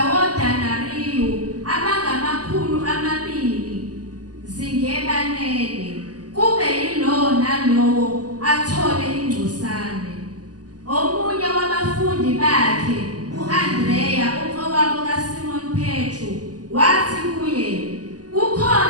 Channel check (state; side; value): late; left; 0.68 ms